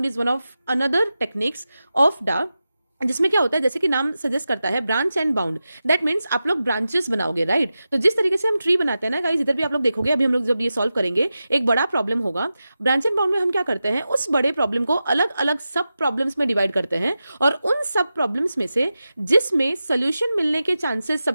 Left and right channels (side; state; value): both; inverted; correlation -0.92